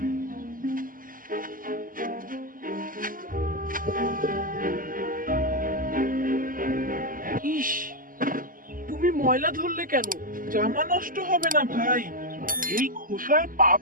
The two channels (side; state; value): left; late; 0.41 ms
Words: ইস, তুমি ময়লা ধরলে কেন? জামা নষ্ট হবে না ভাই। এই খোসায় পা